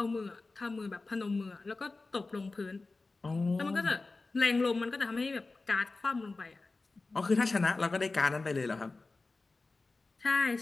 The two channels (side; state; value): right; quieter; 3.6 dB